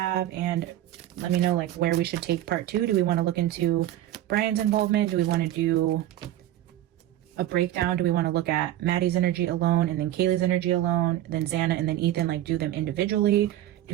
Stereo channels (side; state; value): left; quieter; 13.2 dB